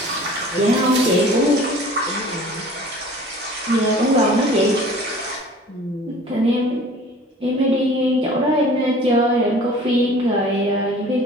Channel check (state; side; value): normal; both; correlation 0.47